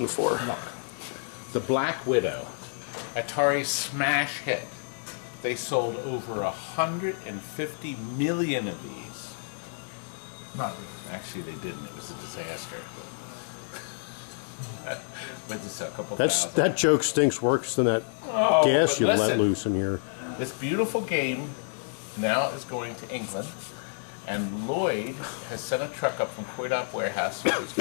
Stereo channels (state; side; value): silent; right; digital silence